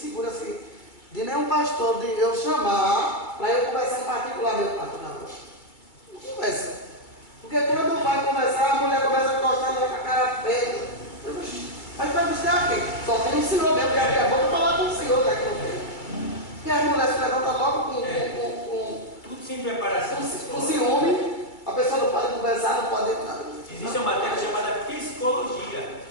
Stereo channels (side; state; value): right; late; 2.2 ms